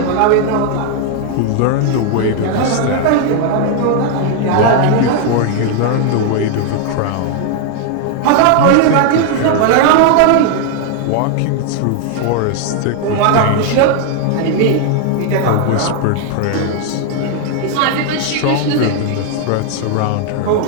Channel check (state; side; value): different; both; correlation 0.00